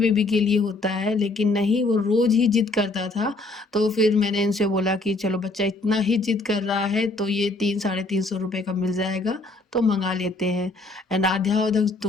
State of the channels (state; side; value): quieter; right; 3.1 dB